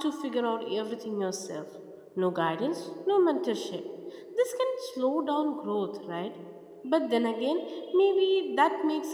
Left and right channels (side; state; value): both; identical; correlation 1.00